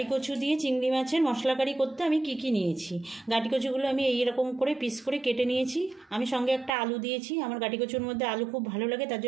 কচু দিয়ে চিংড়ি মাছের মশলা কারি করতে আমি কি কি নিয়েছি। গাঠি কচুগুলো আমি এইরকম করে পিস করে কেটে নিয়েছি। আমি সঙ্গে একটা আলু দিয়েছি, আমার গাঠি কচুর মধ্যে আলু খুব ভালো লাগে তার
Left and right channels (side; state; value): left; drops out; at 6.7 s